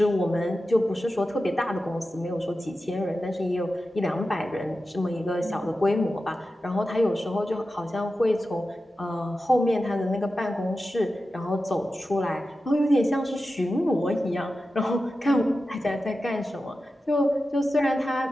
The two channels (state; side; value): normal; both; correlation 0.92